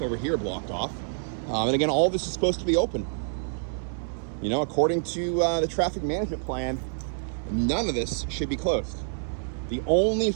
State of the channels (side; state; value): left; silent; 59 dB below the other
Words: here blocked off. And again, all of this is supposed to be open. You know, according to the traffic management plan, none of this should be closed. The only